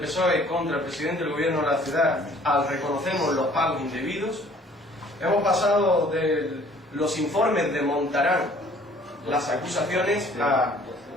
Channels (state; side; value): normal; both; correlation 0.55